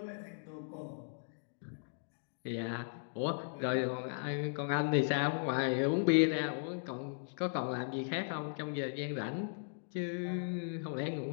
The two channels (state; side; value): silent; right; digital silence